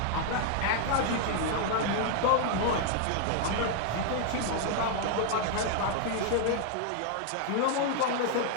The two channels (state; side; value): different; both; correlation 0.00